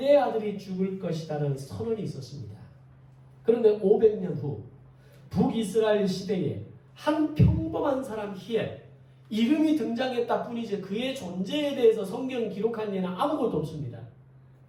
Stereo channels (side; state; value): both; identical; correlation 1.00